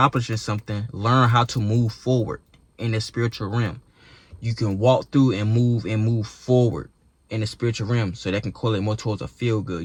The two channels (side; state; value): both; identical; correlation 1.00